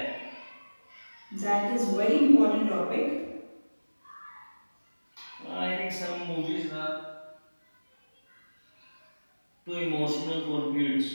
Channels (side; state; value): both; inverted; correlation -1.00